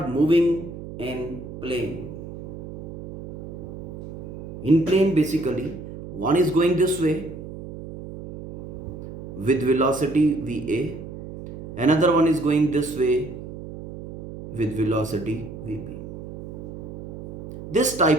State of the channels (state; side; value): noise; right; hum, 11 dB below the sound